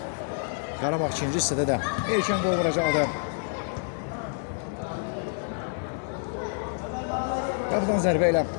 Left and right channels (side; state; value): right; silent; digital silence